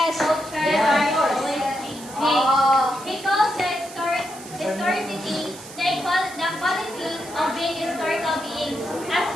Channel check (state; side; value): noise; right; hiss, 16 dB below the sound